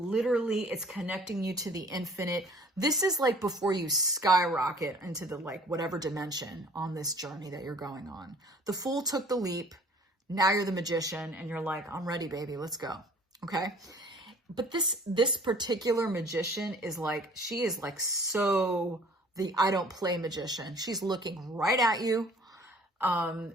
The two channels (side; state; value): both; normal; correlation 0.52